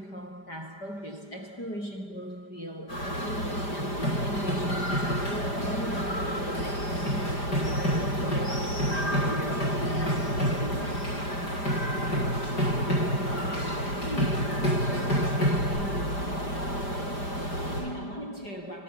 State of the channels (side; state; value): right; late; 5.0 ms